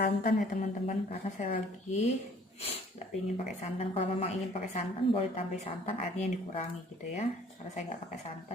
ya teman-teman, karena saya lagi nggak ingin pakai santan. Kalau memang ingin pakai santan boleh tambah santan, airnya yang dikurangi gitu ya. Karena saya nggak pakai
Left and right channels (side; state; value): both; normal; correlation 0.55